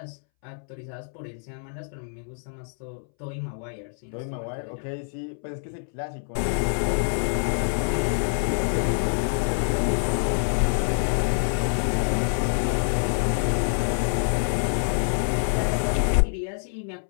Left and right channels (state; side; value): silent; right; 61 dB below the other